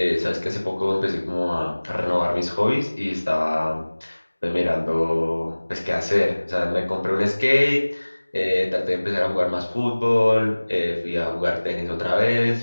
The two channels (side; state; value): both; inverted; correlation -1.00